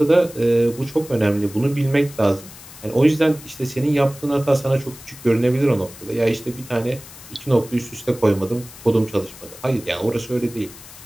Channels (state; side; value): noise; left; hiss, 18 dB below the sound